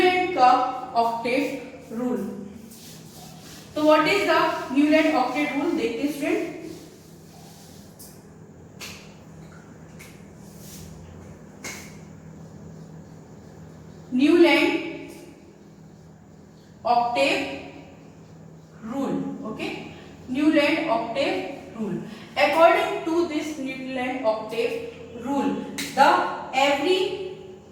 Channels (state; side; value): identical; both; correlation 1.00